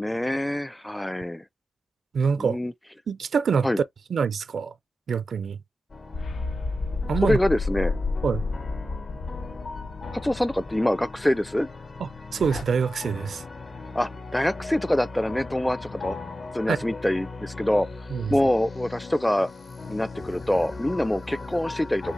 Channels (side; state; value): both; normal; correlation 0.93